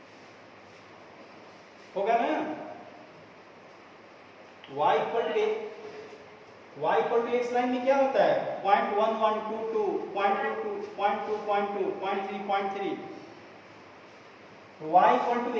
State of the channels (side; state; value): both; identical; correlation 1.00